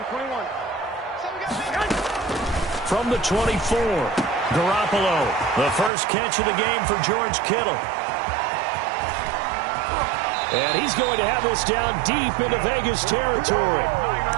From the 24, Garoppolo, the first catch of the game for George Kittle. And he's going to have this down deep into Vegas territory.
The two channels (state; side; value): drops out; left; at 5.9 s